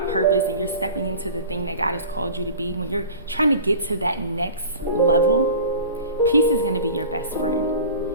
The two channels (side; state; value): both; inverted; correlation -0.39